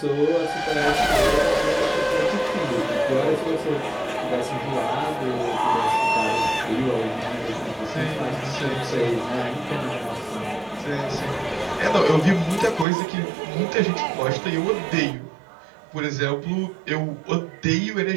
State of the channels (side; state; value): left; drops out; at 12.9 s